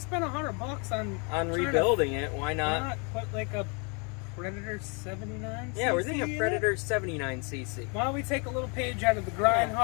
spend $100 on on trying to- rebuilding it, why why not? not put like a Predator 79? Yeah, we're cc thinking in a it? Predator 79cc. Why don't we take a little page out of the Grind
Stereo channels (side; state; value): right; quieter; 34.0 dB